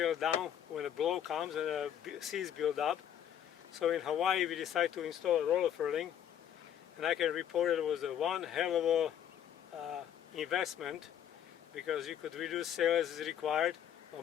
down when a blow comes and the seas build up. So in Hawaii we decided to install a roller furling, and I can report it was one hell of a investment, because you could reduce sail as is required, but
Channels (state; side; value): quieter; right; 9.8 dB